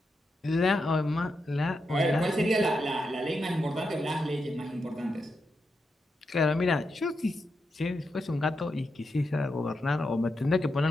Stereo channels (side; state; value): both; normal; correlation 0.85